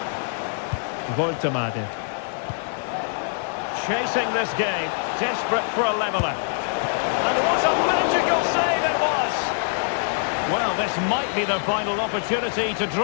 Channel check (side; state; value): right; silent; 63 dB below the other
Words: Voltemade. Chasing this game, desperate for a leveller. And what a magical save it was! Well, this might be the final opportunity to